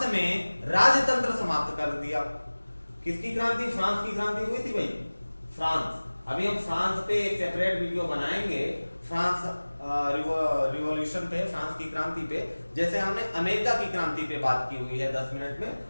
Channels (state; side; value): inverted; both; correlation -1.00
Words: में राजतंत्र समाप्त कर दिया। किसकी क्रांति? फ्रांस की क्रांति हुई थी भाई, फ्रांस। अभी हम फ्रांस पे एक सेपरेट वीडियो बनाएंगे, फ्रांस रिवॉल्यूशन पे, फ्रांस की क्रांति पे। जैसे हमने अमेरिका की क्रांति पे बात की हुई है 10 मिनट में,